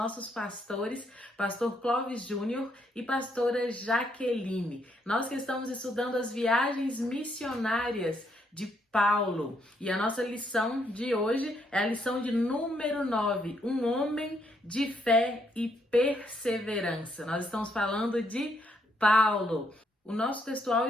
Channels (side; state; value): both; normal; correlation 0.74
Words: pastores, pastor Clóvis Júnior e pastora Jaqueline. Nós que estamos estudando as viagens missionárias de Paulo. E a nossa lição de hoje é a lição de número 9, um homem de fé e perseverança. Nós estamos falando de Paulo. O nosso textual